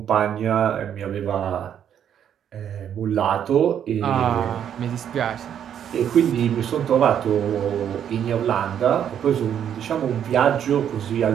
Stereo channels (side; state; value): left; quieter; 9.2 dB